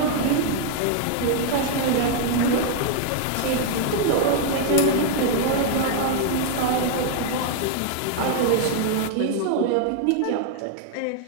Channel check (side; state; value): both; different; correlation 0.00